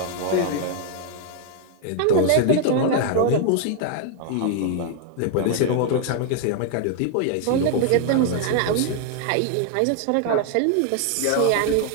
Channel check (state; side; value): different; both; correlation 0.00